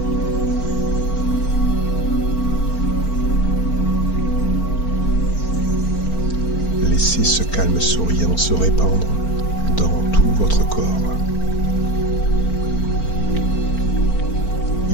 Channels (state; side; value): late; right; 4.4 ms